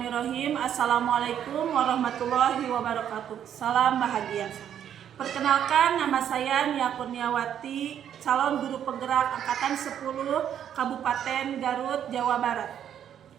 Assalamualaikum warahmatullahi wabarakatuh. Salam bahagia. Perkenalkan, nama saya Nia Kurniawati, calon guru penggerak angkatan 10 Kabupaten Garut, Jawa Barat.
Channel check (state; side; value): quieter; left; 9.6 dB